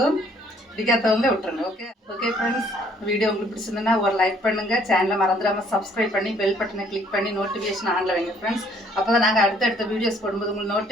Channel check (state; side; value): normal; both; correlation 0.62